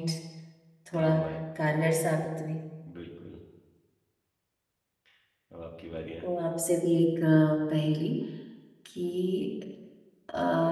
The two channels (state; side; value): identical; both; correlation 1.00